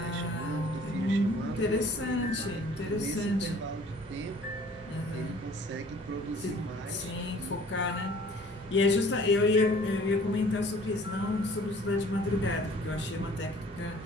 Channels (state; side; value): normal; both; correlation 0.52